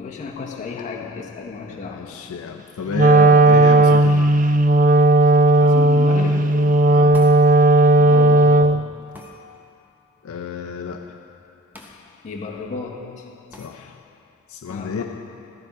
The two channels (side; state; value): both; normal; correlation 0.48